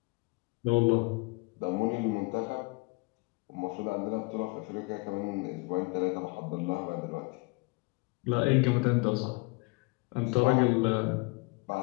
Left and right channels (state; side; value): quieter; right; 27.2 dB